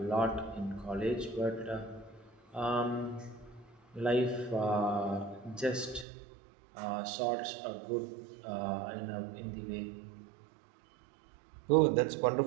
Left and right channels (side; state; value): left; drops out; at 6.1 s